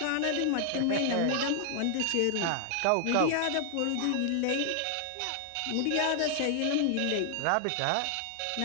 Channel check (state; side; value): different; both; correlation 0.00